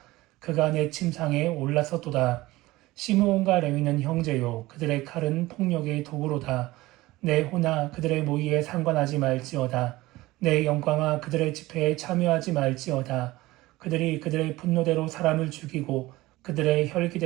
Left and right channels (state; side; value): quieter; left; 18.9 dB